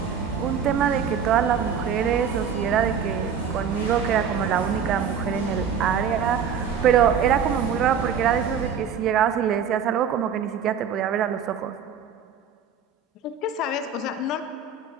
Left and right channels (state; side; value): quieter; left; 7.0 dB